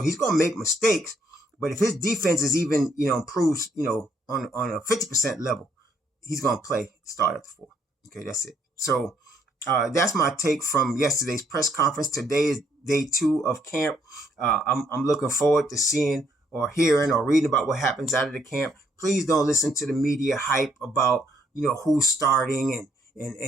going to make mistakes. But if his defense is even, improves, on a 50% level, he's going to start at the 4. Okay. That's it. So, that's my take from yesterday's press conference. Today is day 2 of camp. I'm looking forward to seeing or hearing or reading about what happens out of the camp. Please don't listen to the media hype about, who's starting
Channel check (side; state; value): both; normal; correlation 0.69